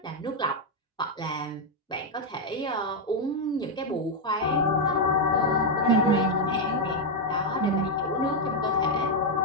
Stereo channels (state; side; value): normal; both; correlation 0.01